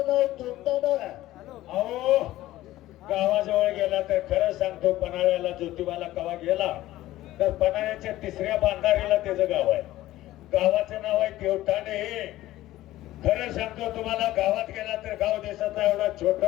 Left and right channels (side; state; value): right; quieter; 15.6 dB